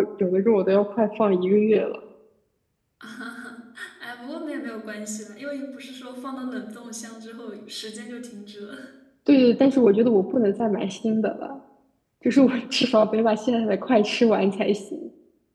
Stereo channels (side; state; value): both; identical; correlation 1.00